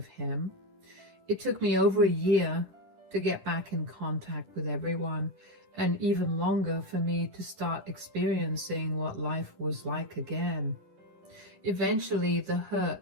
him. It took me over a year to get back in contact with everyone, and even longer for me to start experiencing what life was like again. Eventually, the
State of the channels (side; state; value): left; late; 10 ms